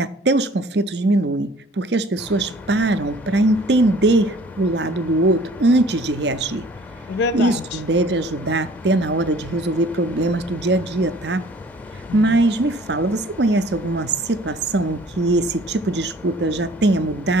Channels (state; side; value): normal; both; correlation 0.52